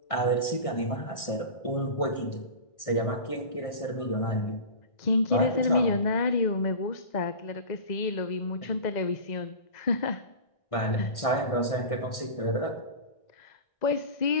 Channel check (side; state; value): right; late; 1.6 ms